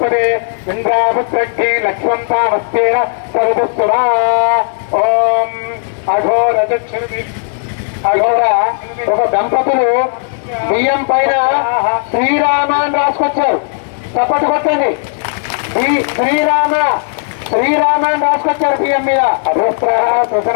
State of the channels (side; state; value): right; silent; digital silence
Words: ఇంద్రాపుత్రగ్నే లక్ష్మం తామస్తేన సర్వసురా ఓం అఘోర ఒక దంపతులు బియ్యం పైన శ్రీరామ అని రాసుకొచ్చారు. చప్పటి కొట్టండి. శ్రీరామ అని రాసుకొచ్చారు బియ్యం మీద.